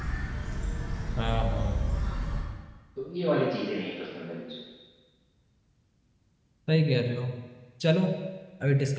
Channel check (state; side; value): identical; both; correlation 1.00